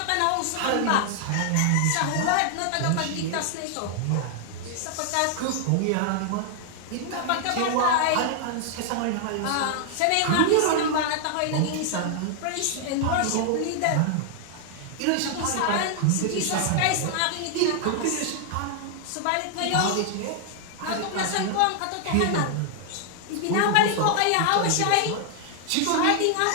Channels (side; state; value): both; different; correlation 0.00